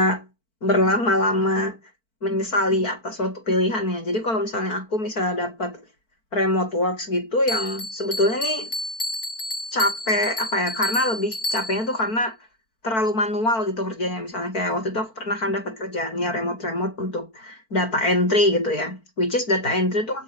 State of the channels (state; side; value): late; right; 4.5 ms